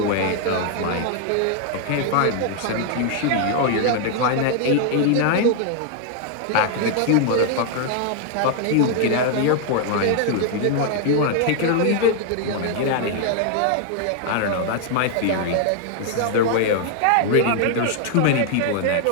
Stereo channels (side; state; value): both; different; correlation 0.00